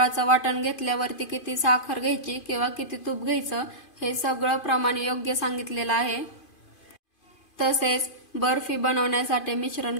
वाटण घेतल्यावरती किती साखर घ्यायची किंवा किती तूप घ्यायचं हे सगळं प्रमाण योग्य सांगितलेलं आहे। तसेच बर्फी बनवण्यासाठी मिश्रण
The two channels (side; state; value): right; late; 2.5 ms